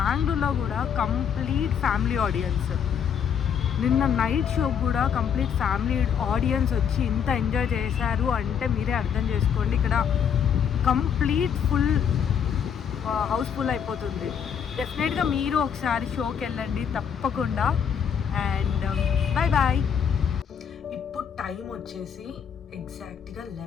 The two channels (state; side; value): quieter; right; 7.7 dB